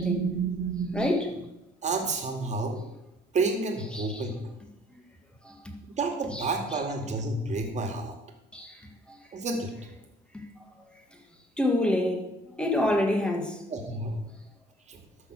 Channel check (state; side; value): normal; both; correlation 0.55